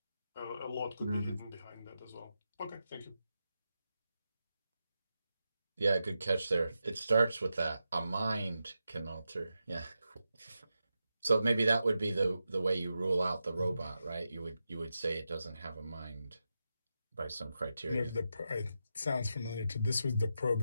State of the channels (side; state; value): both; inverted; correlation -0.89